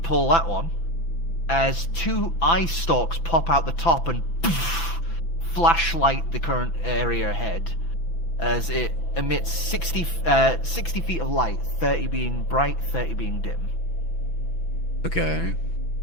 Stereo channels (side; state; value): right; late; 6.0 ms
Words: that one, as 2 eye stalks pop out the top and flashlight the current area ahead, as it emits 60 feet of light, 30 being bright, 30 being dim. Okay.